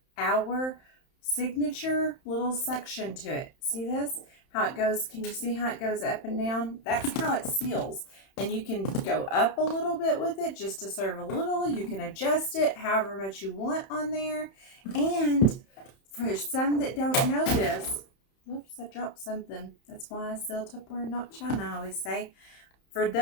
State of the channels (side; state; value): right; late; 31 ms